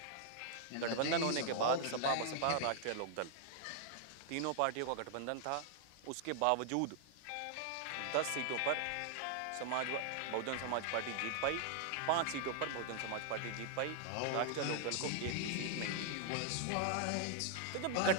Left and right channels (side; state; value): both; different; correlation 0.00